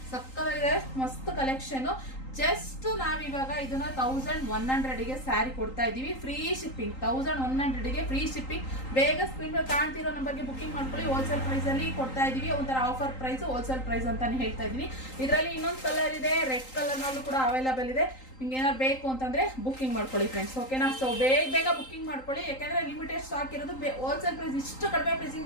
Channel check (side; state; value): right; late; 3.8 ms